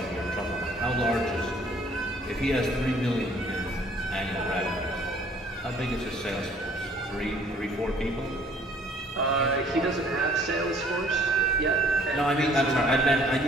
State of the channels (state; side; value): normal; both; correlation 0.58